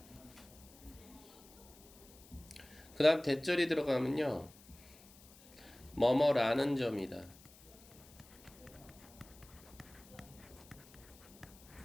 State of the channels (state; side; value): noise; left; hiss, 22 dB below the sound